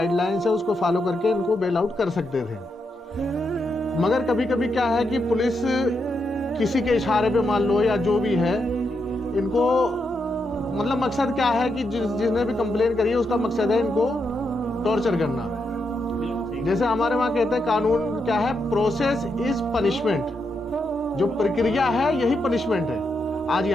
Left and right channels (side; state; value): both; normal; correlation 0.83